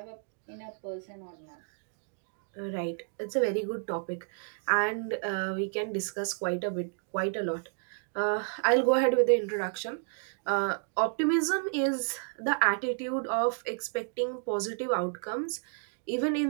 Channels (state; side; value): silent; left; 57 dB below the other